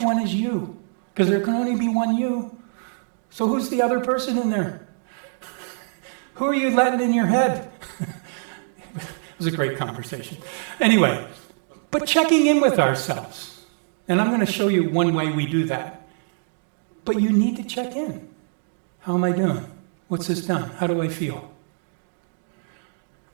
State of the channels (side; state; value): left; silent; digital silence